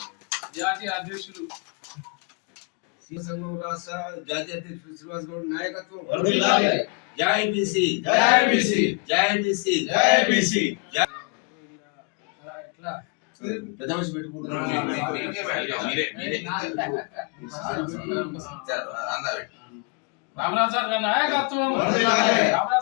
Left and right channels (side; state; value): right; quieter; 33.5 dB